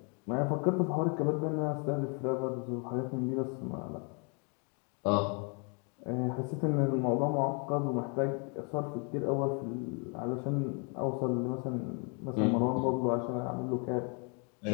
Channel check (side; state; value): right; quieter; 36.3 dB